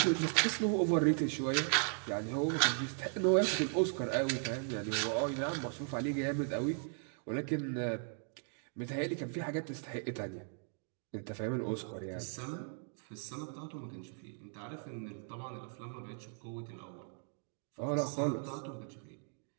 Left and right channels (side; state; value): left; silent; 53 dB below the other